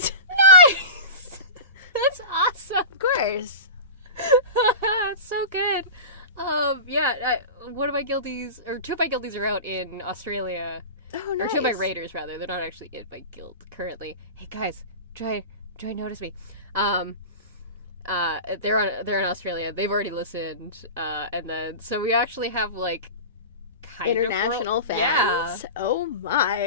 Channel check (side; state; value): both; inverted; correlation -0.30